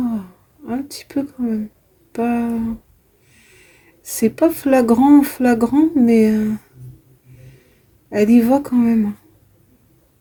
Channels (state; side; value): identical; both; correlation 1.00